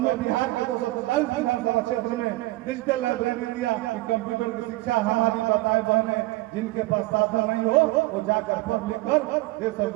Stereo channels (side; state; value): left; quieter; 19.8 dB